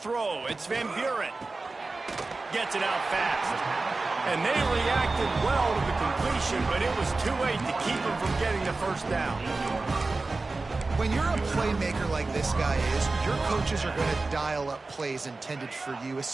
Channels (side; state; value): left; quieter; 3.5 dB